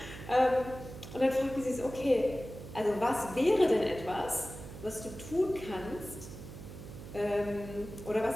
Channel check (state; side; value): noise; right; hum, 13 dB below the sound